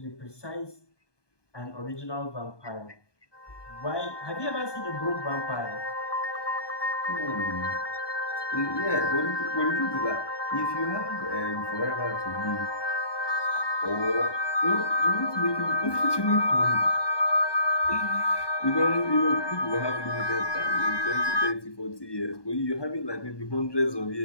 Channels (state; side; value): late; right; 1.2 ms